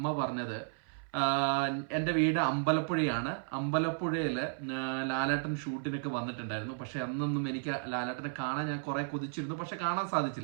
പറഞ്ഞത് എൻ്റെ വീട് അമ്പലപ്പുഴയാണ്. അമ്പലപ്പുഴയില് ലാലേട്ടൻ ഷൂട്ടിനൊക്കെ വന്നിട്ടുണ്ടായിരുന്നു. പക്ഷെ അന്നൊന്നും എനിക്ക് ലാലേട്ടനെ കാണാൻ ഞാൻ കുറെ കൊതിച്ചിരുന്നു, പക്ഷെ കാണാൻ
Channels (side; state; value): left; silent; 55 dB below the other